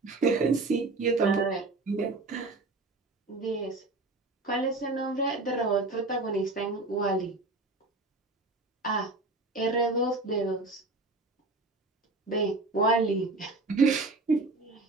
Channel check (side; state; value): left; quieter; 3.2 dB